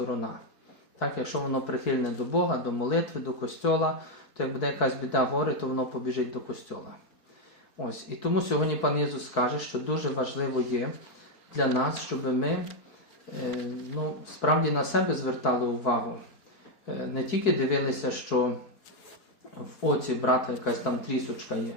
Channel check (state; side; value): late; right; 4.6 ms